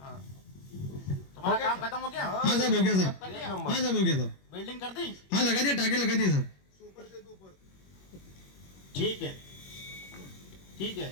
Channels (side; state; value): right; late; 21 ms